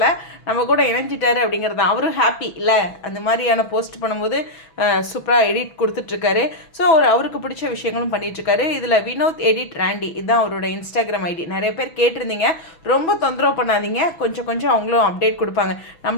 நம்ம கூட இணைஞ்சிட்டாரு அப்படிங்கிறது தான். அவரும் ஹாப்பி இல்லை, அந்த மாதிரியான போஸ்ட் பண்ணும்போது சூப்பராக எடிட் கொடுத்துட்ருக்காரு. ஸோ அவருக்கு பிடிச்ச விஷயங்களும் பண்ணிகிட்ருக்காரு. இதில் வினோத் எடிட் ராண்டி இதுதான் அவரோட இன்ஸ்டாகிராம் ஐடி. நிறைய பேர் கேட்டிருந்தீங்க, ரொம்ப தொந்தரவு பண்ணாதீங்க, கொஞ்சம் அவங்களும் அப்டேட் கொடுப்பாங்க.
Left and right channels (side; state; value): right; late; 6.1 ms